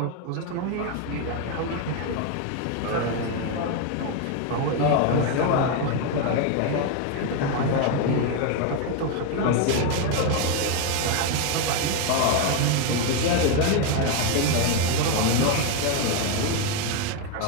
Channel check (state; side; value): different; both; correlation 0.02